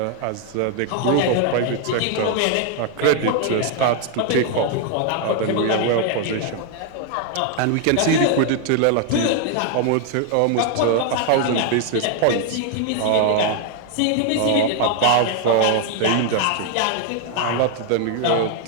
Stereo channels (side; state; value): both; different; correlation 0.00